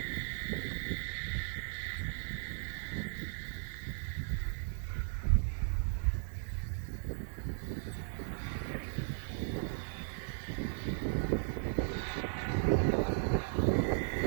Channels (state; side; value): silent; left; 53 dB below the other